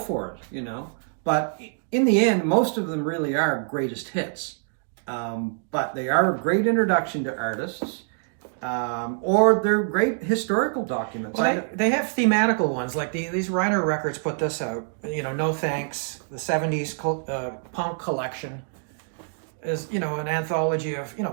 it, you know. But in the end, most of them really are greatest hits. But they are a great introduction to artists. or they're great historical documents. Well, they have thematical ones, like these Reiner Records put this out. You know, No Thanks, the 70s punk collection is, you know, an anthology of, you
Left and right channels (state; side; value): silent; left; digital silence